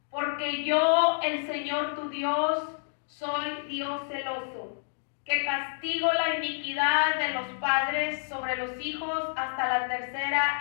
porque yo, el Señor tu Dios, soy Dios celoso, que castigo la iniquidad de los padres sobre los hijos hasta la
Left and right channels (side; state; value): right; silent; digital silence